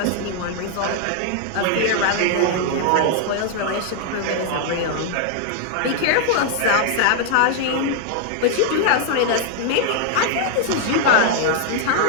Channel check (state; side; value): different; both; correlation 0.00